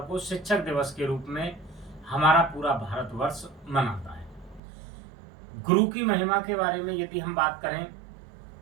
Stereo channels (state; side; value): drops out; left; at 4.6 s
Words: को शिक्षक दिवस के रूप में हमारा पूरा भारतवर्ष मनाता है। गुरु की महिमा के बारे में यदि हम बात करें